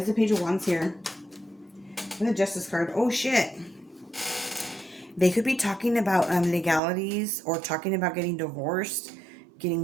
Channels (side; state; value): left; drops out; at 6.8 s